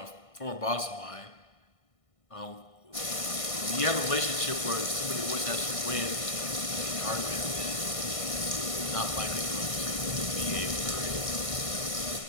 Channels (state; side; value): late; right; 1.6 ms